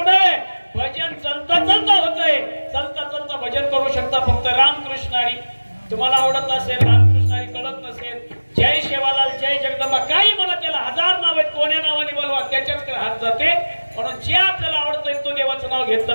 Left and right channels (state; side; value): inverted; both; correlation -1.00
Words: भजन चलता चलता होतंय, चलता चलता भजन करू शकता फक्त रामकृष्णारी. तुम्हाला आवडत असेल, रामकृष्णारी कळत नसेल, जय शेवालाल, जय जगदंबा, काही म्हणा, त्याला 1000 नाव आहेत, कोण्या नावाने बोलवा त्याच्याच हात जाते. म्हणून जे आपल्याला आवडतंय तो देवाचं नाव